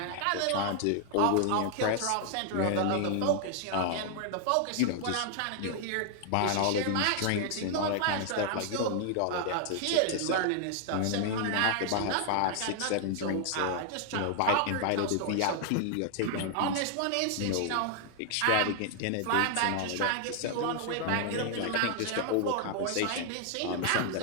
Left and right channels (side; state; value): both; different; correlation 0.00